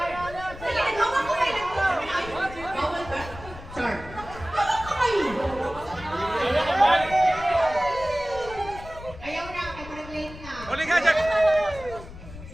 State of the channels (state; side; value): noise; left; rumble, 15 dB below the sound